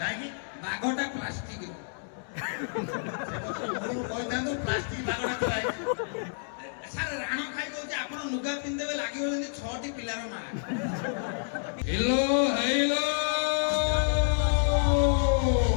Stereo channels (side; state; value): right; silent; digital silence